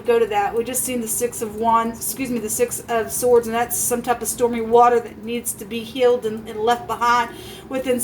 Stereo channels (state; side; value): identical; both; correlation 1.00